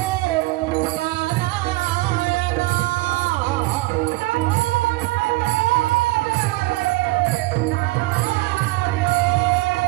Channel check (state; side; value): quieter; left; 20.8 dB